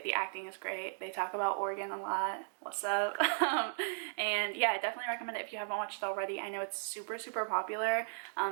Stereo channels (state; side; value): silent; left; digital silence